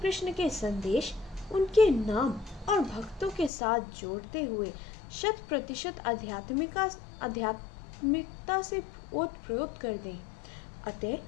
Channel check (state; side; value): drops out; right; at 3.5 s